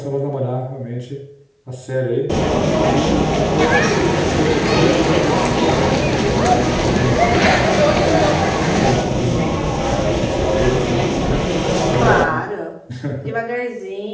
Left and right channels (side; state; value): both; identical; correlation 1.00